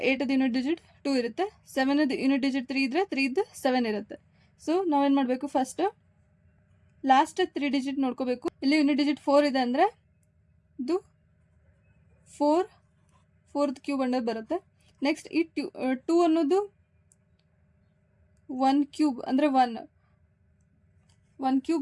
8ದು ಯೂನಿಟ್ ಡಿಜಿಟ್ 2 ಇರುತ್ತೆ, 7ದು ಯೂನಿಟ್ ಡಿಜಿಟ್ 3 ಇದ್ದರೆ 3ದು 7 ಇರುತ್ತೆ. ಸೊ ನಾವೇನು ಮಾಡಬೇಕು, ಫಸ್ಟ್ ಲಾಸ್ಟ್ 3 ಡಿಜಿಟ್ ನೋಡ್ಕೋಬೇಕು. ಇಲ್ಲಿ ಯೂನಿಟ್ ಡಿಜಿಟ್ 4 ಇದೆ ಅಂದರೆ ಇದು 4th ಕ್ಯೂಬ್ ಅನ್ನೋದು ಬರುತ್ತೆ. ನೆಕ್ಸ್ಟ್ ಈ 2 ಅನ್ನೋದು 1 ಕ್ಯೂಬ್ ಅಂದರೆ 1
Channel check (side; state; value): both; identical; correlation 1.00